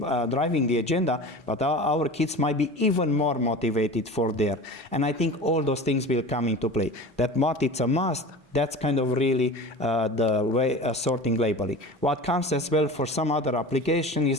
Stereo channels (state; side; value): normal; both; correlation 0.34